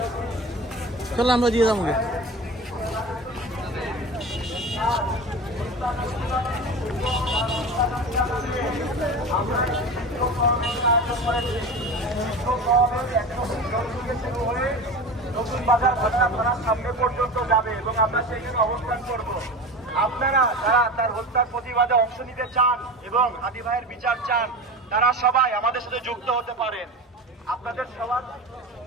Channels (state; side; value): normal; both; correlation 0.30